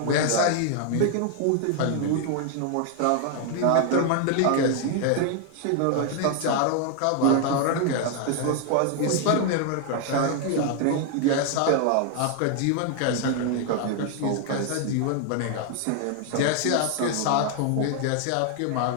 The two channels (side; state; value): both; different; correlation 0.00